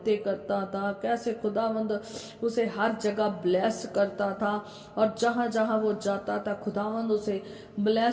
करता था, कैसे खुदावंद उसे हर जगह ब्लेस करता था, और जहाँ जहाँ वो जाता था खुदावंद उसे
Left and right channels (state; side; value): identical; both; correlation 1.00